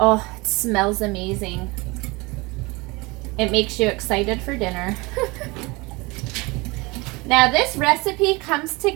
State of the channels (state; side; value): quieter; left; 24.6 dB